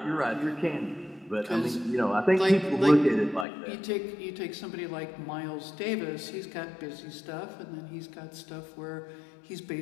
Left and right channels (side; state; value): right; drops out; at 3.5 s